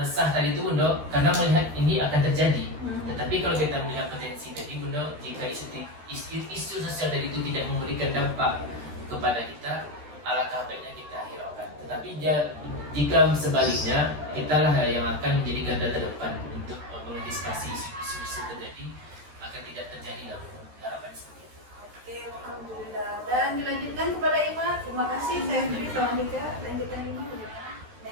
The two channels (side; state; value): left; late; 13 ms